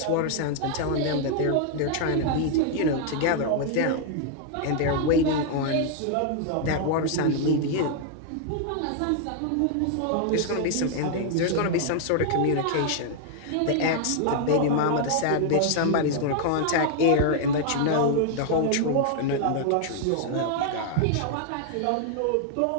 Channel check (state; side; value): different; both; correlation 0.00